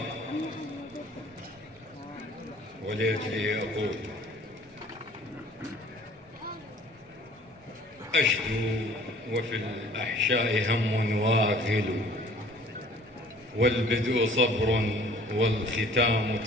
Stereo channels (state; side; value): normal; both; correlation 0.52